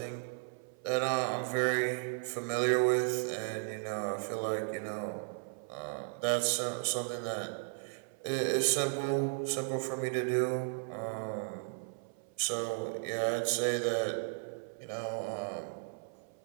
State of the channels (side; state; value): left; silent; 54 dB below the other